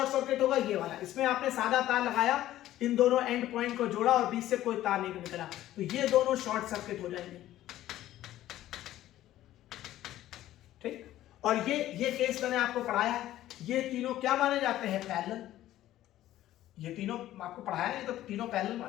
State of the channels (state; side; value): quieter; right; 13.9 dB